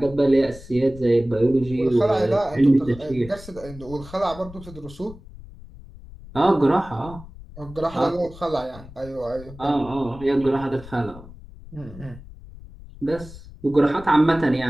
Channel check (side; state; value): left; noise; rumble, 17 dB below the sound